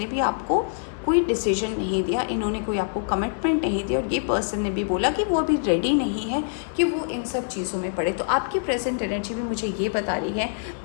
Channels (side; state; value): right; silent; 62 dB below the other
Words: भी आपको कोई डिसीजन नहीं दिया, इन्होंने कोई आपको कमिटमेंट नहीं दिया, और ये पर्सन ने भी बोला कि वो अभी रेडी नहीं है कि वो इन सब चीज़ों में पड़े। तो आपकी प्रेजेंट एनर्जी भी मुझे ये बता रही है